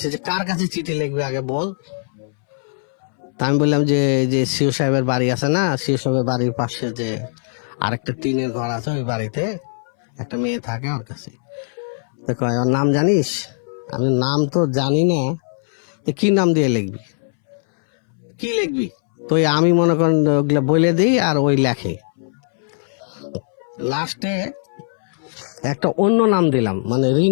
যে কার কাছে চিঠি লিখবে আগে বল। তা আমি বললাম যে যে সিও সাহেবের বাড়ি আছে না, সিও সাহেবের বাড়ির পাশে যে আরেকটা টিনের ঘর আছে, ওই বাড়িতে একটা মেয়ে থাকে, ওর কাছে। তো কয় ওর নাম জানিস? আমি নাম তো জানি না। তো কি নাম দিয়ে লিখবি? কি লিখবি? তো ওই আমি মনে করেন ওগুলা বলে দিই, আর ওই লেখে। লাস্টে একটা অন্য নাম দিলাম, মানে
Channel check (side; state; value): right; silent; 63 dB below the other